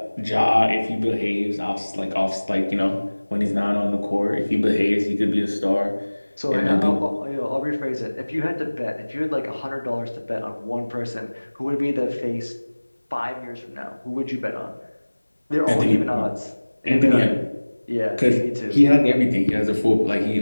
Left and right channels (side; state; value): both; inverted; correlation -1.00